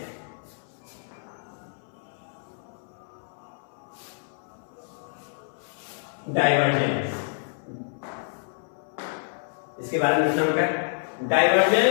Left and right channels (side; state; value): right; silent; 59 dB below the other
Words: डाइवर्जेंस इसके बारे में लिखना होगा,